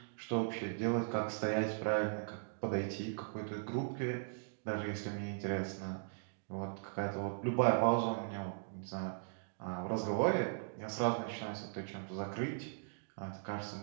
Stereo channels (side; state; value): left; silent; digital silence